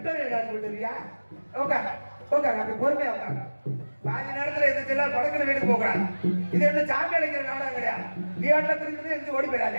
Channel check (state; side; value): inverted; both; correlation -1.00